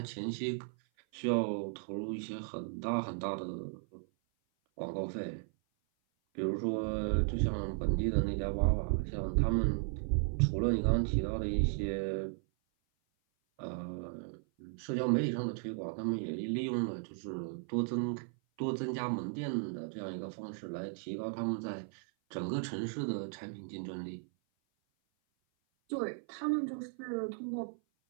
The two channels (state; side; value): silent; left; 54 dB below the other